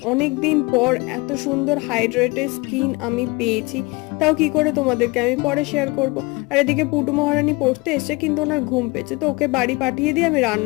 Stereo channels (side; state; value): right; quieter; 24.7 dB